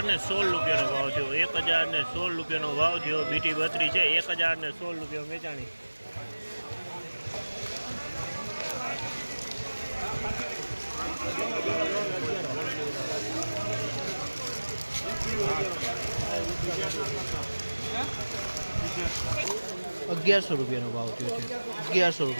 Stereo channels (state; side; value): inverted; both; correlation -1.00